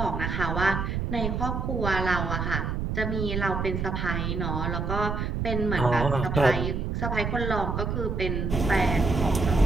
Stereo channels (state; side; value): noise; right; rumble, 2 dB below the sound